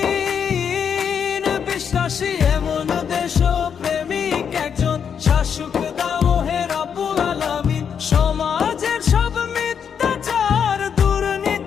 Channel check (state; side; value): quieter; right; 7.4 dB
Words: বিশ্বাসী এমন দেশপ্রেমিক একজন শাসক দাও হে রব্বুল আলামিন। সমাজের সব মিথ্যাচার